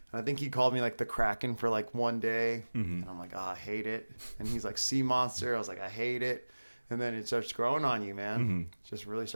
And I think he called me like the Kraken for like one day. And I'm like, I hate it. And he's like, Sea Monster. I was like, I hate it. And then it starts growing on you, man. It just really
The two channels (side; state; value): both; inverted; correlation -1.00